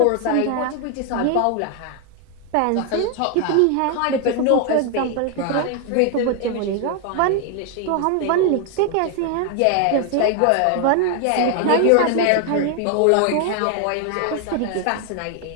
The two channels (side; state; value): both; different; correlation 0.00